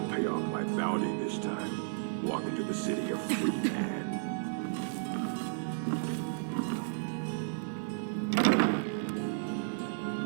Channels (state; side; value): silent; left; digital silence